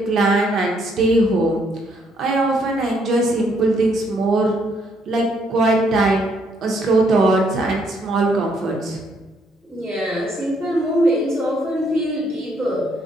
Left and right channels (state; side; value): normal; both; correlation 0.70